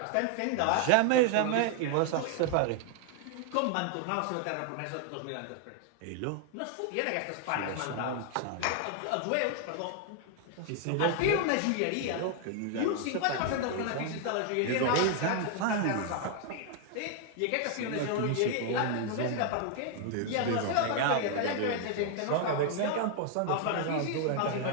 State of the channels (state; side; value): different; both; correlation 0.00